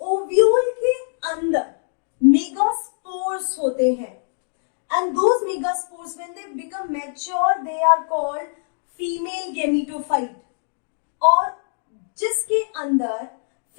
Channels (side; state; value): right; silent; digital silence